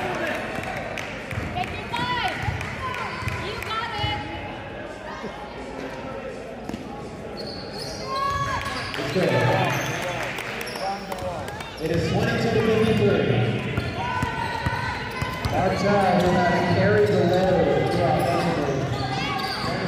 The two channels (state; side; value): identical; both; correlation 1.00